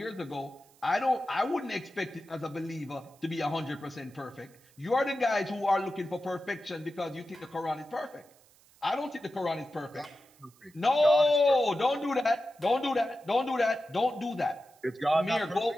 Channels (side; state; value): right; noise; hiss, 29 dB below the sound